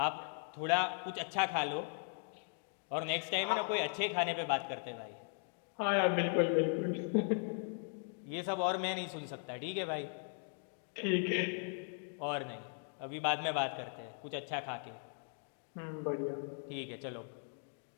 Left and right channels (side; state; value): right; silent; 52 dB below the other